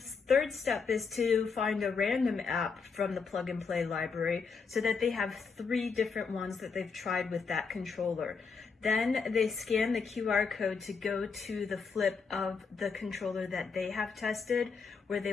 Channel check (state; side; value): quieter; right; 5.2 dB